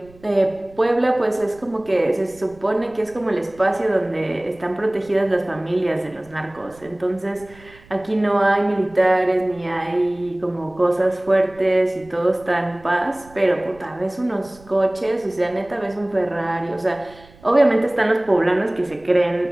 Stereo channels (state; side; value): noise; right; rumble, 25 dB below the sound